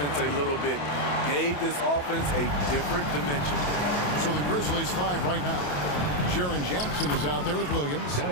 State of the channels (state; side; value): late; right; 28 ms